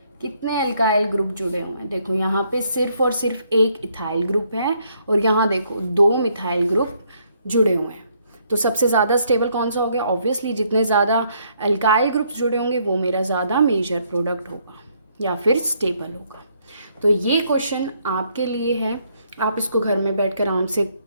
कितने एल्काइल ग्रुप जुड़े हुए हैं, देखो यहाँ पे सिर्फ और सिर्फ एक इथाइल ग्रुप है और यहाँ देखो 2 मिथाइल ग्रुप जुड़े हुए हैं। तो सबसे ज़्यादा स्टेबल कौन सा हो गया, ऑब्वियसली जितने ज़्यादा एल्काइल ग्रुप्स जुड़े होंगे वो मेरा ज़्यादा मेजर प्रोडक्ट होगा या फिर स्टेबल होगा। तो ये क्वेश्चन आपके लिए है, आप इसको घर में बैठकर आराम से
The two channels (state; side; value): inverted; both; correlation -0.70